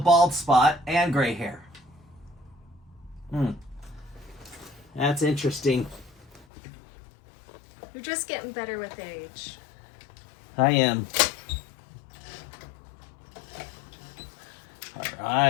spot and gray hair. That's interesting. You're just getting better with age. I am. All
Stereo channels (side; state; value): right; drops out; at 6.5 s